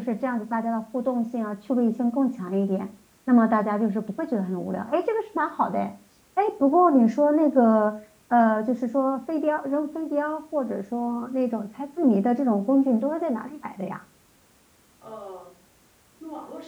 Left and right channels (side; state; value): both; identical; correlation 1.00